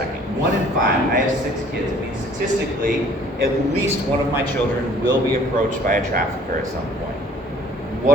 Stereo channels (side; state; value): both; normal; correlation 0.54